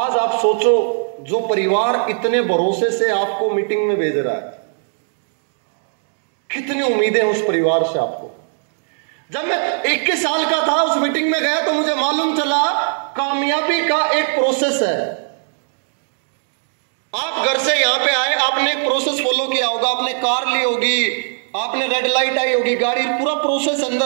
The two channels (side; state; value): left; silent; digital silence